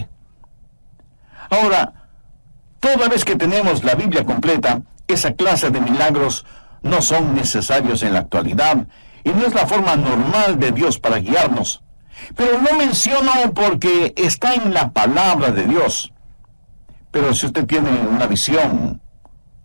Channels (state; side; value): inverted; both; correlation -1.00